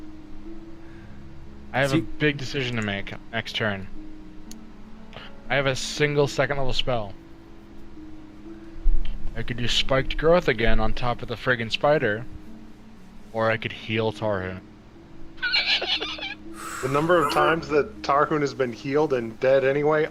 I have See- a big decision to make next turn. I have a single second level spell. I could do spiked growth again on top of the friggin' spider, or I could heal Tarhoon. The number of times that Tarhoon has been healed and dead anyway,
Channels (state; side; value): identical; both; correlation 1.00